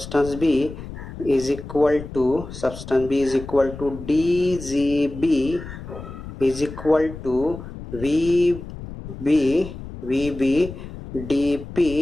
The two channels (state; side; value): noise; left; rumble, 12 dB below the sound